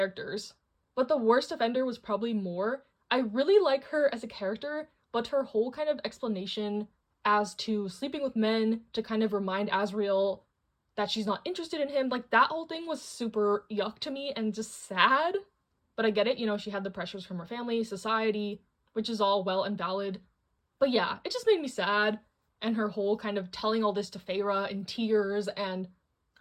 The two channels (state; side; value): identical; both; correlation 1.00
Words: But the worst offender was probably Mor. I really like her as a character, but her whole kind of explanation as to sleeping with men to kind of remind Asriel that she's not interested in him, like, that whole thing was super yuck to me and just sad. But I get it, she had the pressures from her family, society, which is all well and valid. But yeah, it just made me sad, and her whole kind of telling all this to Feyre in tears, and